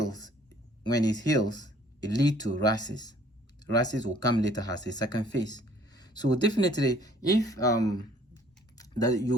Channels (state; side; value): normal; both; correlation 0.58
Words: it leads to rashes. Rashes will come later as a second phase. So definitely, if that